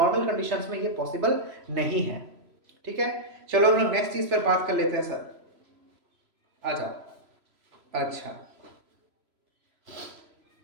कंडीशंस में ये पॉसिबल नहीं है, ठीक है। चलो हम लोग नेक्स्ट चीज पर बात कर लेते हैं सर, आ जाओ। अच्छा,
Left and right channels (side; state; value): left; late; 3.0 ms